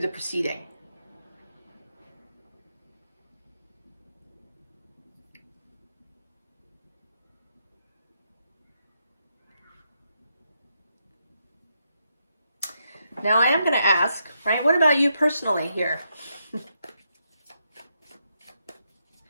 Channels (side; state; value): both; inverted; correlation -0.81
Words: proceeding. Now I am going to ask, right, what about you personally here?